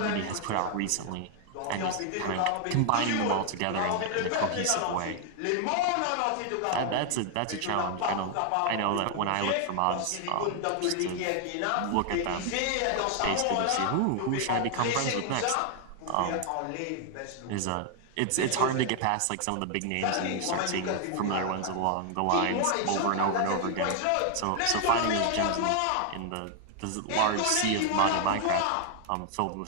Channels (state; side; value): different; both; correlation 0.00